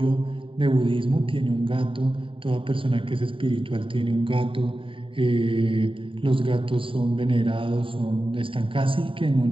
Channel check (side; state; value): left; late; 0.25 ms